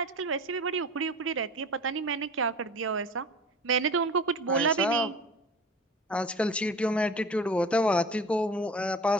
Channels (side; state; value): both; normal; correlation 0.38